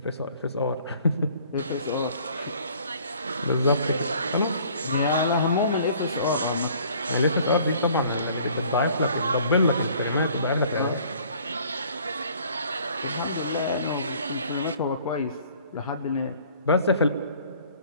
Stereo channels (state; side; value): inverted; both; correlation -0.55